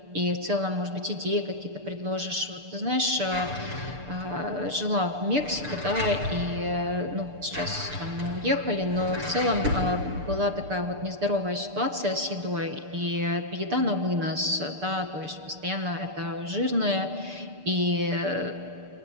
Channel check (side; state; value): left; late; 6.7 ms